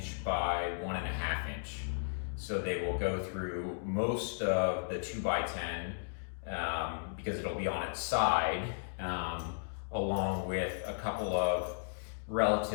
by 1.5 inch. So they will go through most of the 2x10 because it'll be on its side, along with a couple of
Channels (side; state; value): right; silent; digital silence